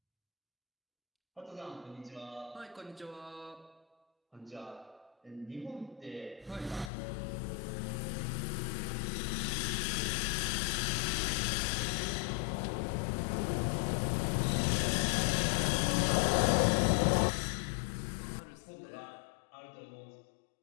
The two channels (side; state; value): right; drops out; at 6.9 s